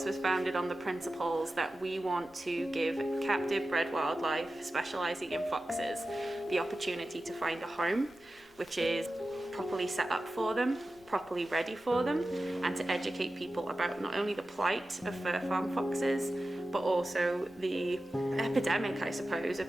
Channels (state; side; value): noise; left; rumble, 29 dB below the sound